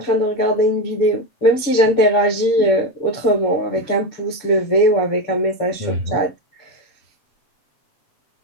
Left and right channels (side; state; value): right; late; 7.0 ms